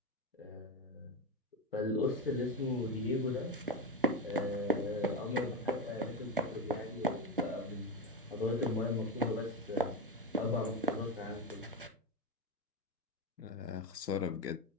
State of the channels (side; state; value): both; normal; correlation 0.14